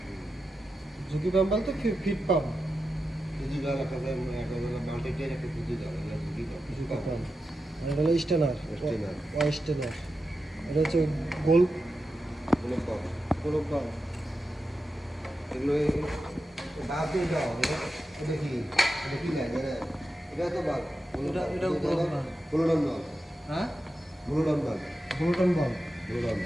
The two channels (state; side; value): normal; both; correlation 0.90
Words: ঝুঁকি পাম্প বলতে ফিট পাম্প। ঝুঁকি জল একটা মাল্টিটের একটা ঝুঁকি জল, এটা ঝুঁকি পাম্প, ঝুঁকি পাম্প। আর এটা হলো স্টেনার। স্টেনার। স্টেনার। এটা হচ্ছে গোল কোনো পাম্প। গোলক পাম্প। এগুলো বাদ দিয়ে দাও, এটা কি, এটা কি লাইন, এটা তো বাদ। এটা ব্লুডন বাল্ব। হ্যাঁ ব্লুডন বাল্ব। ব্লুটন বাল্ব। ব্লুডন।